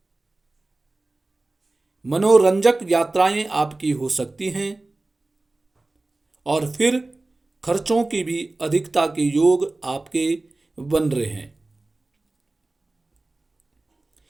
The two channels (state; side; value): quieter; left; 3.0 dB